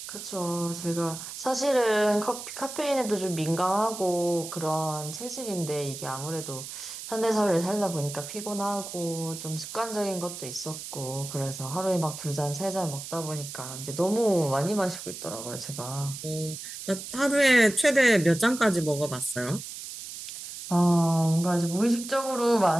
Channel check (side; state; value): right; noise; hiss, 10 dB below the sound